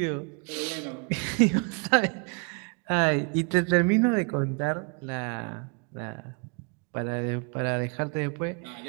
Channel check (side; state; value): left; quieter; 36.9 dB